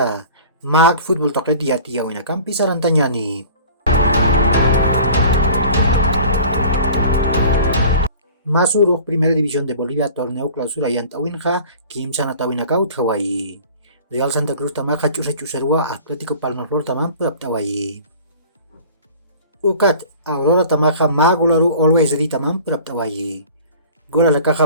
mag fútbol toque dia tia wina kampi sarantanyani. Masuruk Primera División de Bolivia torneo clausura yantawinja Kim Sanatawinakaut Hawaii. Real Santa Cruz tamaja chusa chusarua Atlético Palmaflor tamam Hawaii. Ukat Aurora tamaja magularu always ready tamam Hawaii. Gola la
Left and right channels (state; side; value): inverted; both; correlation -0.44